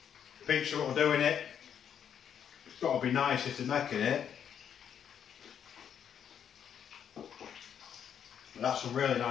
pizza what we're doing it, it's got to be nice if they're making it. That's a really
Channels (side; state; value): right; quieter; 8.5 dB